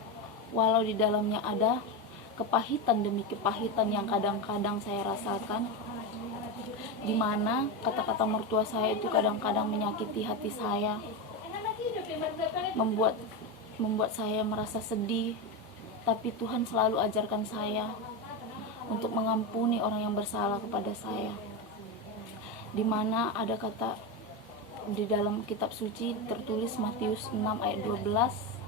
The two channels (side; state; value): both; normal; correlation 0.14